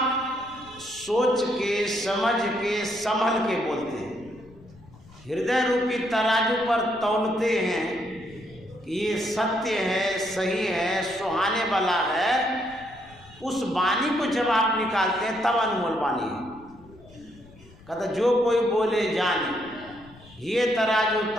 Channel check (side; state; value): left; noise; rumble, 23 dB below the sound